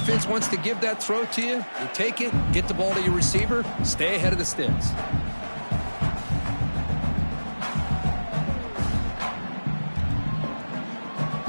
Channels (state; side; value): inverted; both; correlation -1.00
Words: wants to give that throw to you. You take it, get the ball to your receiver, stay ahead of the sticks.